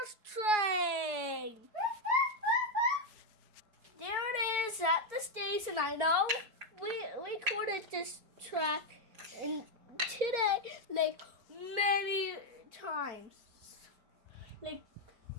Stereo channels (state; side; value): late; left; 4.6 ms